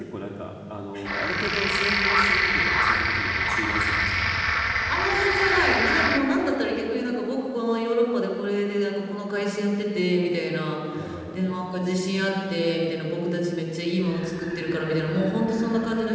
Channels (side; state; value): both; identical; correlation 1.00